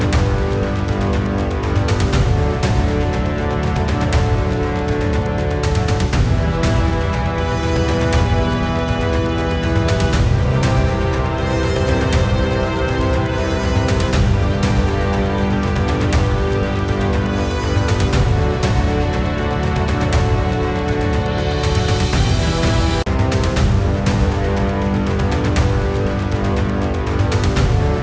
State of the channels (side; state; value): both; identical; correlation 1.00